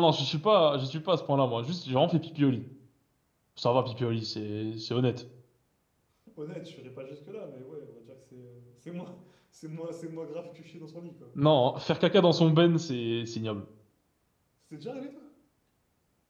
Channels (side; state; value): both; identical; correlation 1.00